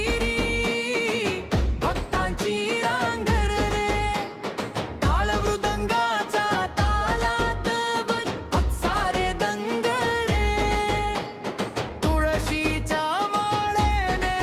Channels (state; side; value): identical; both; correlation 1.00